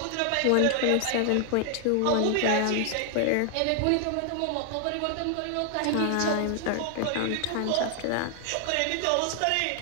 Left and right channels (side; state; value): both; different; correlation 0.00